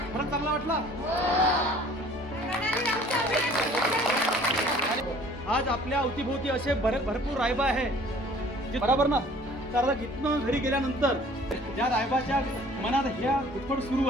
खरंच चांगला वाटला? आज आपल्या अवतीभोवती असे भरपूर रायबा आहे जे बरोबर ना. तर इथनं घरी गेल्यानंतर ज्या रायबाच्या मनात ह्या घुटफड सुरू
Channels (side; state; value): both; normal; correlation 0.52